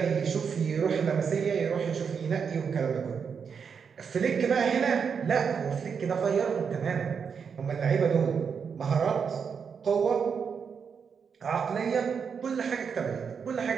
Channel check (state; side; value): quieter; left; 6.4 dB